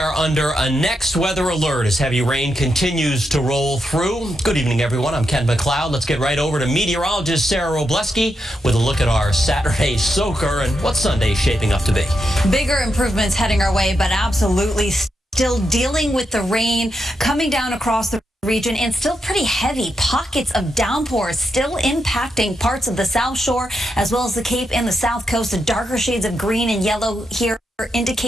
under a next weather alert as heavy rain continues to roll through. Good evening, everyone. I'm Ken McLeod. Let's get right over to meteorologist Sarah Robleski with a look at our Saturday soaker and what Sunday's shaping up to be. Bigger improvements heading our way, but absolutely still dealing with the rain coming down across the region and still pretty heavy pockets of downpours still impacting parts of the South Shore as well as the Cape and the South Coast. The darker shades of green and yellow here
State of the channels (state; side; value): normal; both; correlation 0.84